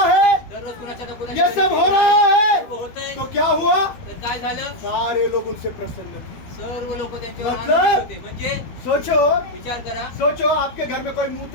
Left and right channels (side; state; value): right; late; 12 ms